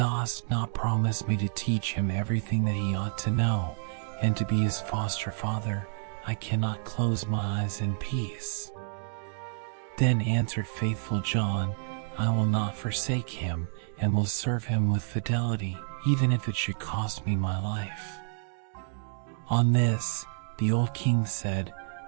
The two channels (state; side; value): silent; left; 58 dB below the other